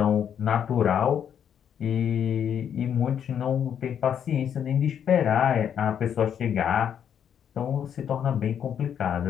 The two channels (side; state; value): right; quieter; 8.7 dB